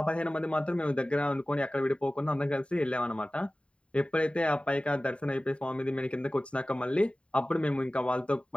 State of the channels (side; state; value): right; late; 0.059 ms